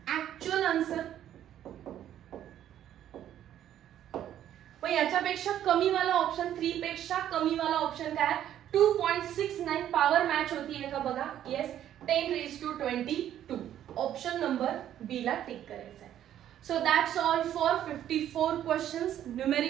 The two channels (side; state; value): left; quieter; 11.1 dB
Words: actual answer. पण याच्यापेक्षा कमी वाला ऑप्शन 3 पेक्षा कमी वाला ऑप्शन काय? 2.69 पॉवर मॅच होतीये का बघा. Yes, 10 raised to 22. Option number B ला टिक करायचं आहे. So that's all for 54 questions.